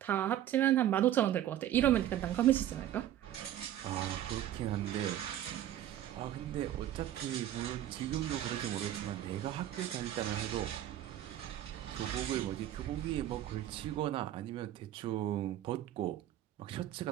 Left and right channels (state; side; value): quieter; left; 12.2 dB